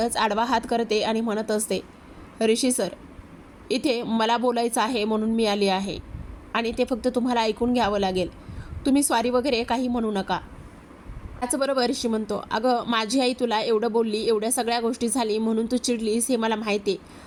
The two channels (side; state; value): both; identical; correlation 1.00